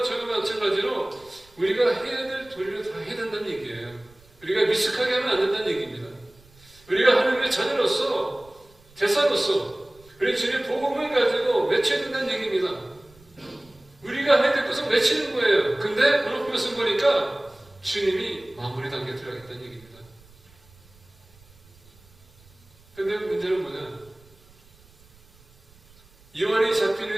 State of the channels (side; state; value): right; noise; rumble, 28 dB below the sound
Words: 저와 마찬가지로 우리가 해야 될 도리를 다 해야 된다는 얘기예요. 우리가 미숙하게 하면 안 된다는 얘기입니다. 우리가 하나님의 자녀로서, 대사로서 우리 주님의 복음을 가지고 외쳐야 된다는 얘기입니다. 우리가 해야 될 것은 외치는 거예요. 근데 오늘 말씀 보니까 주님이 마무리 단계에 들어가겠다는 얘기입니다. 근데 문제는 뭐냐? 요한이 잡힌